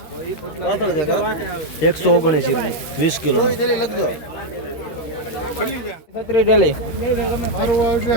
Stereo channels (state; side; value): late; right; 13 ms